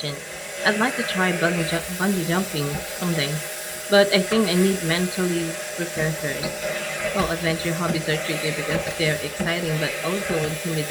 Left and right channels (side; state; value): both; identical; correlation 1.00